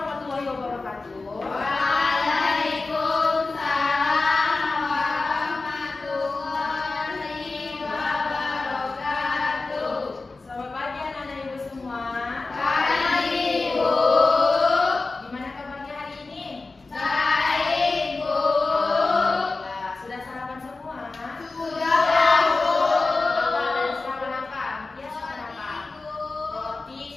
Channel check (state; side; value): quieter; right; 3.6 dB